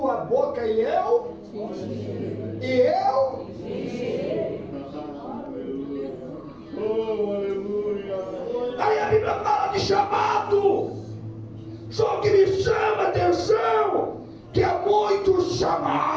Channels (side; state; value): both; identical; correlation 1.00